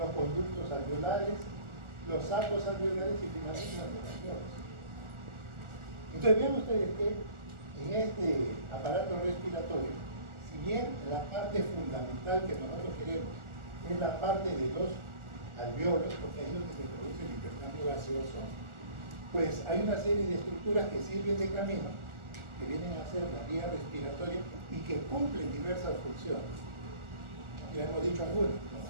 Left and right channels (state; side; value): late; left; 1.4 ms